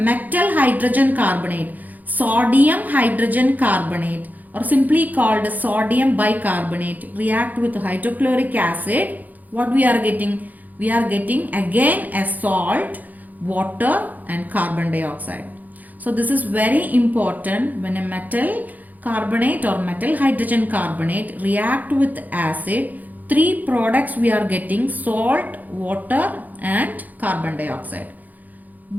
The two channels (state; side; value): late; left; 0.081 ms